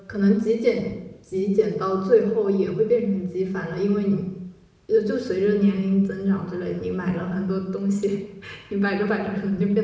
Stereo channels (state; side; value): identical; both; correlation 1.00